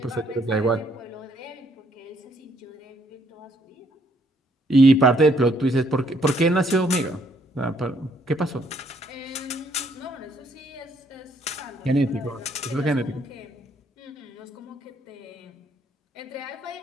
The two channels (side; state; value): both; normal; correlation 0.68